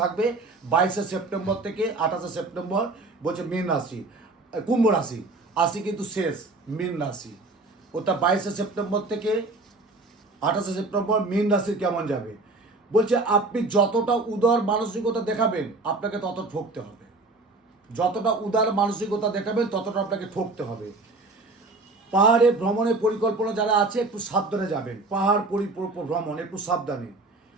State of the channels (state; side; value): quieter; left; 3.3 dB